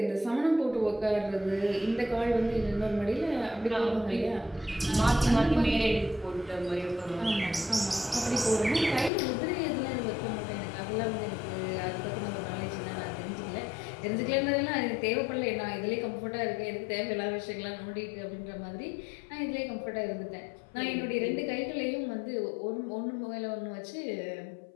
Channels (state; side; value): drops out; right; at 9.1 s